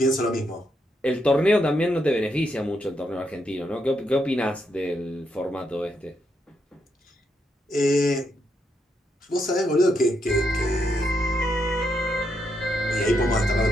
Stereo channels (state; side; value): normal; both; correlation 0.80